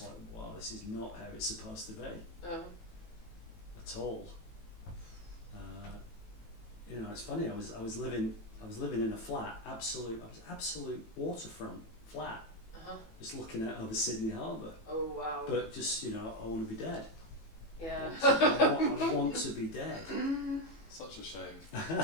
like, wow, this is not how it's supposed to be at all. You know, it's funny. I was living in a flat, absolute waterfront flat, just looking out over Sydney Harbour. Oh wow. But just, you know, I want to be dead. Yeah. I want to be dead. Such a shame.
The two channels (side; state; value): right; late; 18 ms